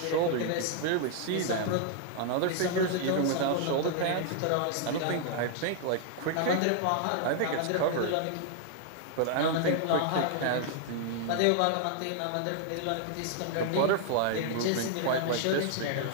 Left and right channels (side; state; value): both; different; correlation 0.00